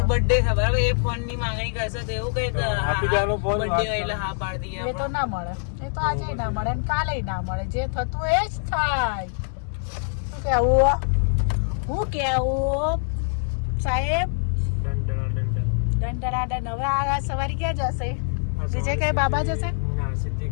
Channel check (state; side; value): silent; right; 62 dB below the other